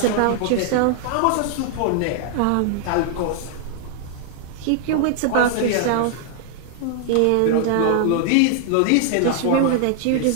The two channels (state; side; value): different; both; correlation 0.00